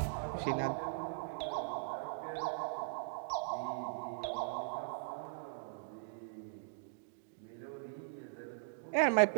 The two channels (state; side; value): silent; left; digital silence